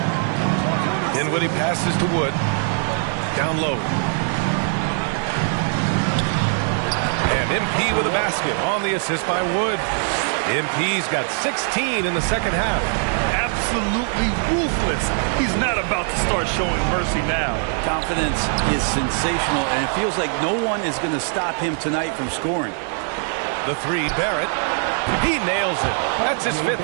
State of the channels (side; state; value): left; silent; 56 dB below the other